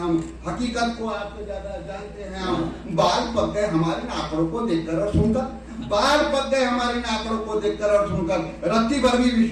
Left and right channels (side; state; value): both; identical; correlation 1.00